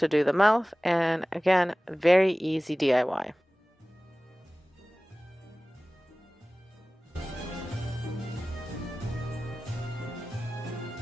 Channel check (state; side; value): normal; both; correlation 0.98